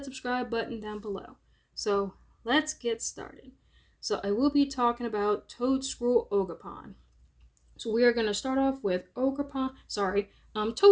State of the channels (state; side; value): identical; both; correlation 1.00